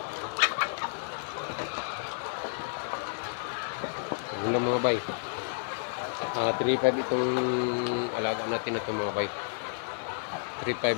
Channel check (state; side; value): silent; right; digital silence